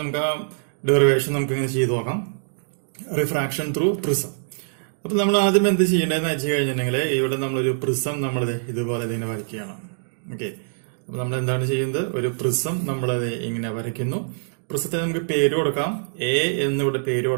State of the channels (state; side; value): silent; left; digital silence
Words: നമുക്ക് ആ ഡെറിവേഷൻ നമുക്ക് ഇങ്ങനെ ചെയ്തു നോക്കാം. Refraction through prism. അപ്പൊ നമ്മൾ ആദ്യം എന്ത് ചെയ്യേണ്ടതെന്ന് വെച്ച് കഴിഞ്ഞിട്ടുണ്ടെങ്കിൽ ഇവിടെ നമ്മളൊരു പ്രിസം നമ്മൾ ഇതുപോലെ ഇതിനെ വരയ്ക്കുകയാണ്. ഓക്കെ, അപ്പൊ നമ്മൾ എന്താണ് ചെയ്യുന്നത്? ഒരു പ്രിസം നമ്മളത് ഇങ്ങനെ വരയ്ക്കുന്നു. പ്രിസത്തിന് നമുക്ക് പേര് കൊടുക്കാം. എ എന്നിവിടെ പേര്